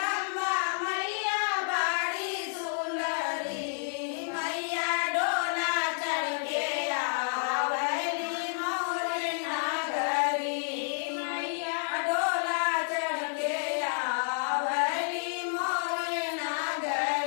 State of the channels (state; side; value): silent; right; digital silence